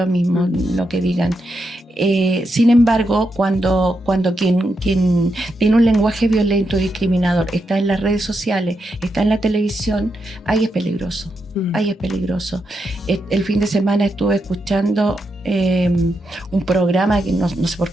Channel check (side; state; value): both; normal; correlation 0.84